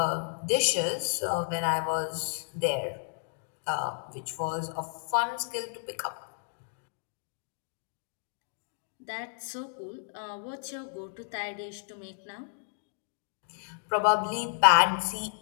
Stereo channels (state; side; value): silent; right; digital silence